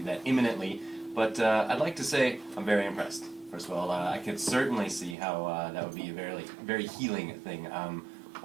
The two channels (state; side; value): drops out; left; at 5.2 s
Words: that imminently, but I'd like to say I'm very impressed. First of all, I could certainly see how that would be a very healing thing.